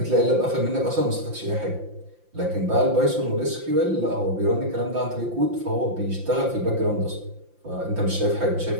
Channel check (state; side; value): late; left; 5.8 ms